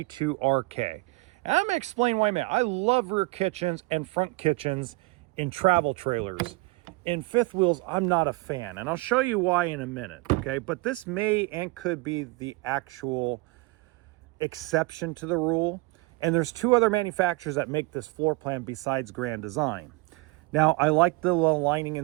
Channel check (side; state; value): left; quieter; 24.2 dB